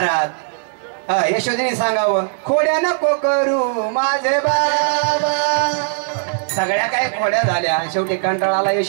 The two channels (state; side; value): silent; left; digital silence